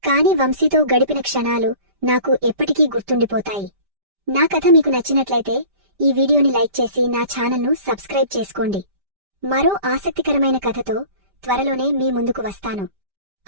కాని వంశీతో గడిపిన క్షణాలు నాకు ఎప్పటికీ గుర్తుండిపోతాయి. నా కథ మీకు నచ్చినట్లయితే ఈ వీడియోని లైక్ చేసి నా ఛానల్ను సబ్స్క్రైబ్ చేసుకోండి. మరో ఆసక్తికరమైన కథతో త్వరలోనే మీ ముందుకు వస్తాను.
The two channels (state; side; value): late; left; 5.1 ms